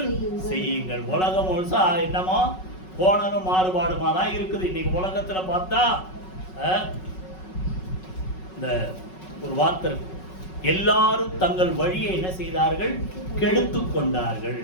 செய்யுங்கள். உலகம் முழுசா என்னமோ போனதும் மாறுபாடுமா தான் இருக்குது. இன்னைக்கு உலகத்துல பார்த்தா இந்த ஒரு வார்த்தை இருக்கு, எல்லாரும் தங்கள் வழியை என்ன செய்தார்கள்? கெடுத்து கொண்டார்கள்.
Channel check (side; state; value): right; late; 5.4 ms